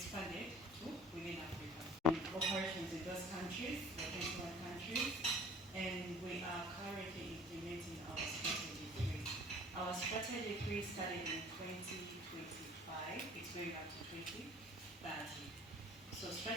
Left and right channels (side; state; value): both; normal; correlation 0.50